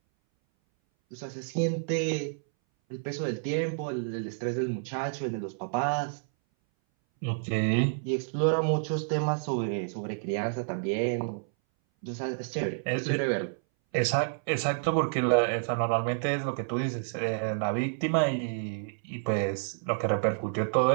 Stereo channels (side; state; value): left; silent; 58 dB below the other